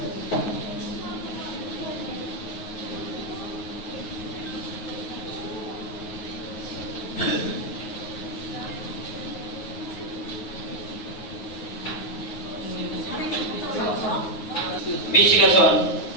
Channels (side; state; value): right; late; 9.4 ms